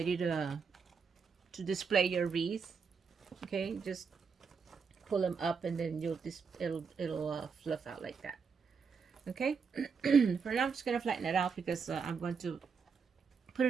to display your wreath. Okay, just pull them up, and then it'll fluff out like that. Okay. For now, I'm just gonna flatten it out because I'm going to put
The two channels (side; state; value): left; quieter; 5.7 dB